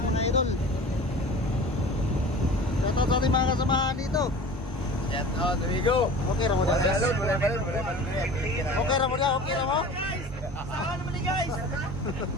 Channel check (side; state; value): both; normal; correlation 0.40